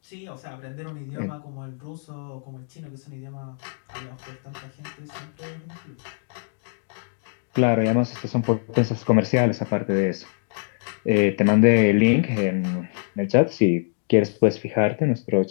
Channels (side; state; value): right; silent; digital silence